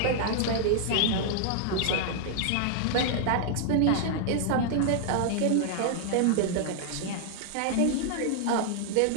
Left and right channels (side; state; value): both; different; correlation 0.00